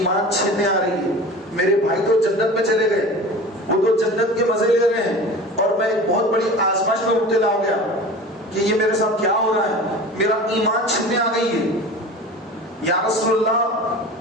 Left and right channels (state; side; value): normal; both; correlation 0.36